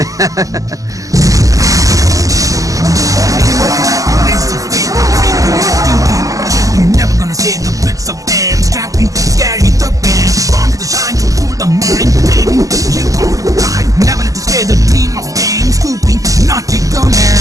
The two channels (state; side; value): late; left; 0.17 ms